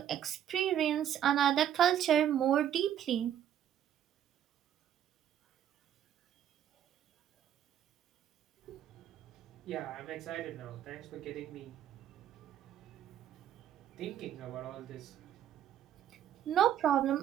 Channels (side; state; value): left; quieter; 10.4 dB